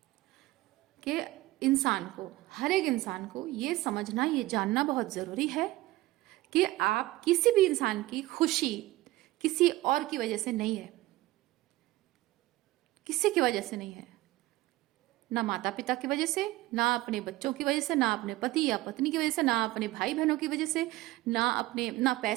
कि इंसान को, हर एक इंसान को ये समझना, ये जानना बहुत जरूरी है कि आप किसी भी इंसान की खुशी किसी और की वजह से नहीं है, किसी की वजह से नहीं है। ना माता पिता की वजह से, ना अपने बच्चों की वजह से, ना अपने पति या पत्नी की वजह से, ना अपने भाई बहनों की वजह से, ना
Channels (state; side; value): quieter; left; 18.1 dB